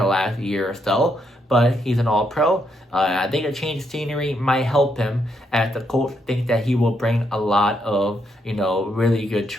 last year or so, but he's an all-pro. I think a change of scenery might help him, as the Colts think that he will bring a lot of, really good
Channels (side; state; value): both; normal; correlation 0.77